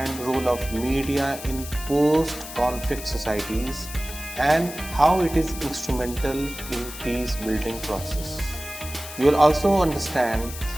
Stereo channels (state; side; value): noise; left; hiss, 12 dB below the sound